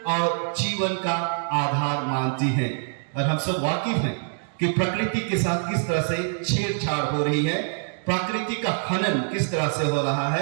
और जीवन का आधार मानती है। और हम सब वाकिफ हैं कि प्रकृति के साथ किस तरह से छेड़छाड़ हो रही है, प्रकृति का हनन किस तरह से हो रहा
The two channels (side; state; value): left; silent; 62 dB below the other